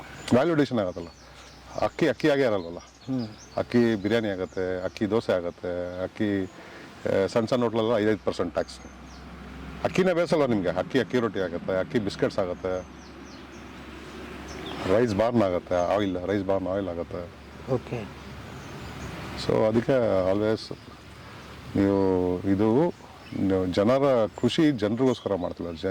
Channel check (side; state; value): both; identical; correlation 1.00